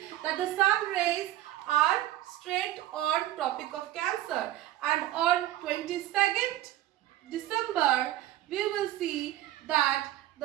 that the sun rays are straight on Tropic of Cancer. And on 22nd December, we will see that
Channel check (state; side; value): quieter; left; 14.4 dB